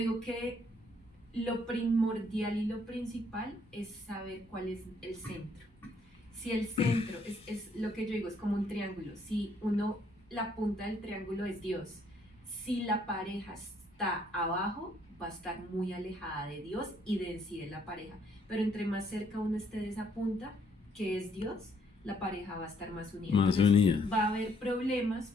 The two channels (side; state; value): both; normal; correlation 0.68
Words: que lo primordial y lo principal es saber cuál es el centro. Si el centro es lo que yo digo, es como un triángulo. Si la punta del triángulo es Dios, si la pareja está abajo, va a estar muy alejada de Dios y de sí de la pareja. Pero entre más cerca uno esté de esa punta, que es Dios, la pareja va a estar más unida. Entonces, va a haber problemas,